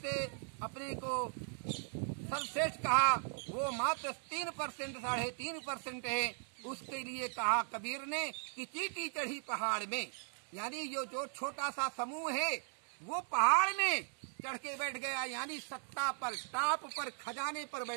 अपने को सर्वश्रेष्ठ कहा, वो मात्र 3%, 3.5% है। उसके लिए कहा कबीर ने कि चींटी चढ़ी पहाड़ में, यानी जो छोटा सा समूह है वो पहाड़ में चढ़ के बैठ गया, यानी सत्ता पर, टाप पर, खजाने पर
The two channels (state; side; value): silent; left; 52 dB below the other